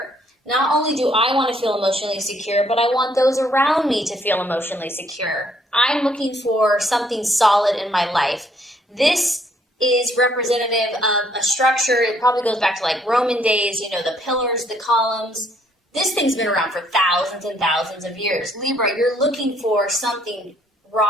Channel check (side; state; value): both; normal; correlation 0.67